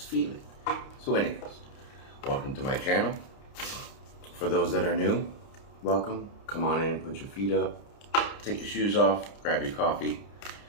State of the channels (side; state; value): right; late; 30 ms